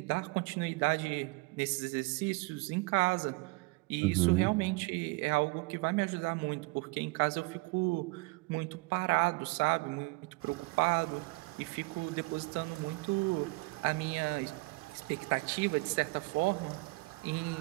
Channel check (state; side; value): quieter; left; 26.0 dB